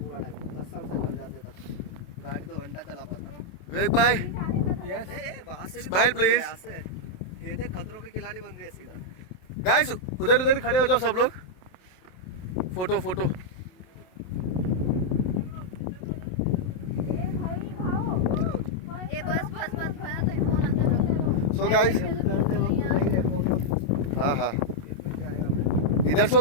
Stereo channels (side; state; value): right; late; 27 ms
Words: टाइम कसम से घर जाते तक गाड़ी 2 घंटा चला पाता। विवेक भाई यस वहां से स्माइल प्लीज। ये देख खतरों के खिलाड़ी बन रही है सीधा। गाइस उधर उधर खड़े हो जाओ सब लोग, फोटो फोटो। ए बस बस बस भैया तेरी फोन अंदर सो गाइस हाँ हाँ इधर से